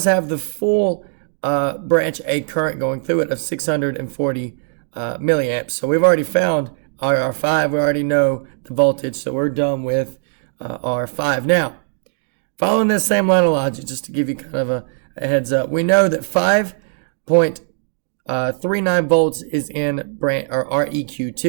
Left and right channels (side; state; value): left; silent; digital silence